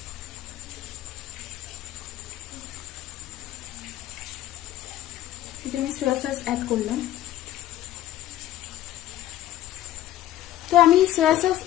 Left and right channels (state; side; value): quieter; right; 13.5 dB